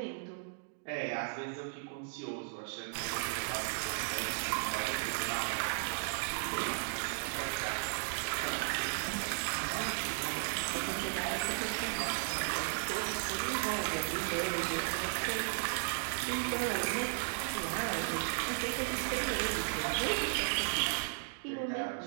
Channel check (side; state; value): left; silent; digital silence